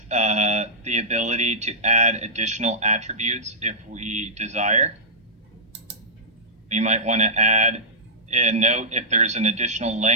the ability to add additional attributes if we desire. We might want to add a note if there's an additional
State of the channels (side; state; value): both; normal; correlation -0.14